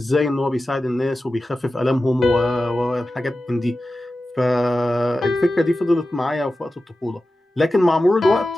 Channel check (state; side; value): normal; both; correlation 0.94